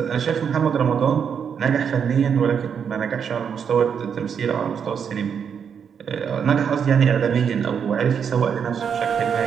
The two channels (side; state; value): left; quieter; 7.2 dB